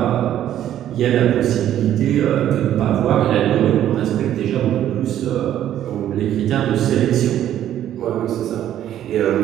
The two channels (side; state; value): left; quieter; 11.5 dB